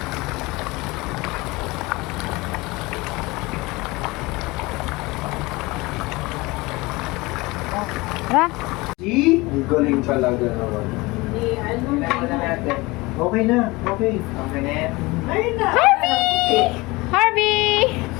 Tara. Ang galing talaga naman. Okay na. Okay. Okay na yan. Harvey! Harvey!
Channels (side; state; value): right; quieter; 22.8 dB